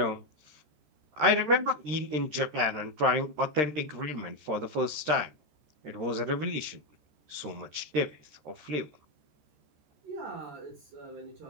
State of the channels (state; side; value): late; left; 13 ms